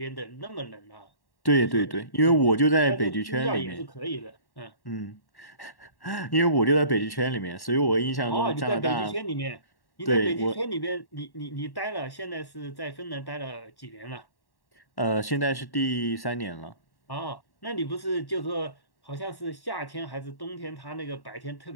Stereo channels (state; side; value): late; right; 1.1 ms